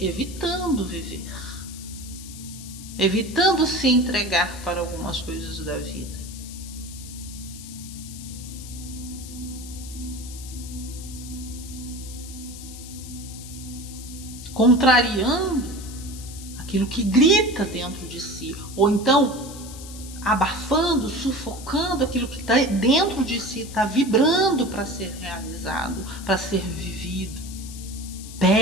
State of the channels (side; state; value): left; noise; hiss, 14 dB below the sound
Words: evitando viver, evitando se entregar para algumas coisas da vida. Contrariando aquilo que grita dentro de si, ou então abafando, sufocando aquilo que está dentro de si, está vibrando para ser realizado, para ser vivido.